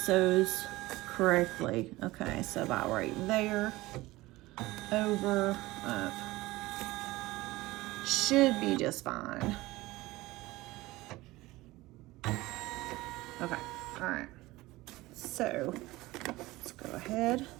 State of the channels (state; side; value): quieter; left; 19.2 dB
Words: correctly. Okay, so about right there, over, up. Should be just fine. Okay, all right. So let's go ahead.